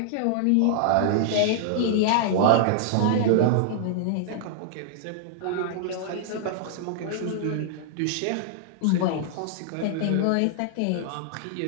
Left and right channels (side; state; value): both; different; correlation -0.01